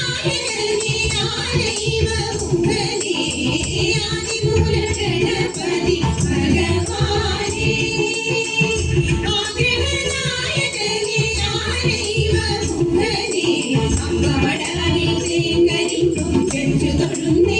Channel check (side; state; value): both; identical; correlation 1.00